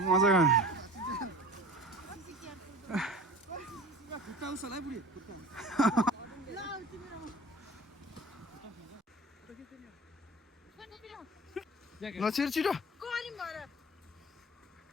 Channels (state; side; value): normal; both; correlation 0.39